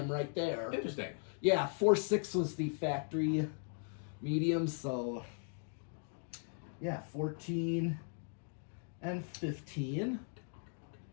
right there. Interesting. Yeah, 4.6 was the factory medium, so yeah, 14 and 15.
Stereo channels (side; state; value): right; silent; 52 dB below the other